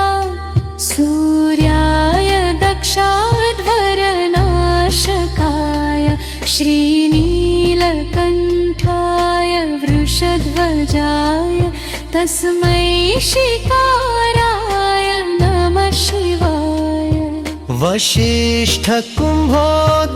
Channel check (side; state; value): both; identical; correlation 1.00